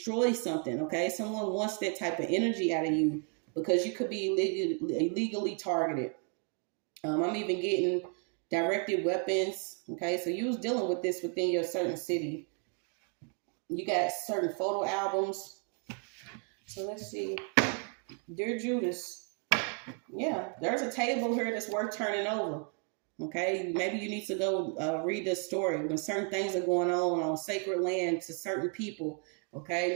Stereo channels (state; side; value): quieter; left; 38.2 dB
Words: something. Okay, someone wants that type of energy out of you because you could be illegally targeted. I'm even getting directed weapons. Okay, so you was dealing with this within your certain city. You got certain photo albums. So let's see. Dear Judas. Yeah, there's a table here that's worth turning over. Okay, maybe you need to go read this story when certain things are going on sacred land to certain people. Okay,